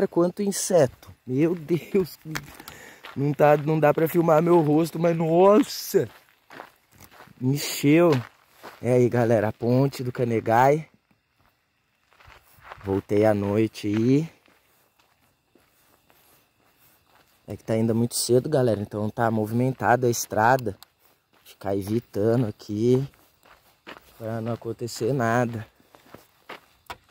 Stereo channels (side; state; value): both; identical; correlation 1.00